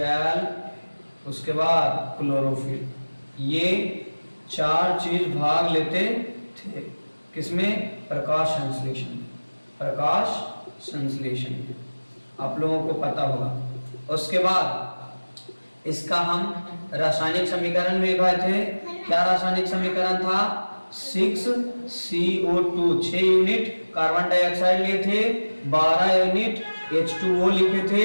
उसके बाद क्लोरोफिल। ये 4 चीज भाग लेते थे किसमें? प्रकाश संश्लेषण आप लोगों को पता होगा। उसके बाद इसका हम रासायनिक समीकरण में लिखे थे। क्या रासायनिक समीकरण था? 6CO2 6 यूनिट कार्बन डाइऑक्साइड लिए थे, 12 यूनिट H2O लिखे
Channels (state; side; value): inverted; both; correlation -1.00